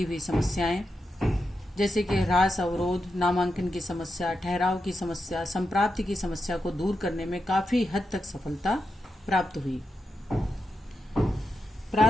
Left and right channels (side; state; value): both; normal; correlation 0.87